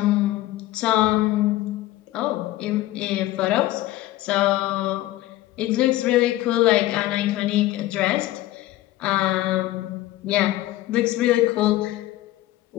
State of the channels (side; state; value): right; quieter; 16.0 dB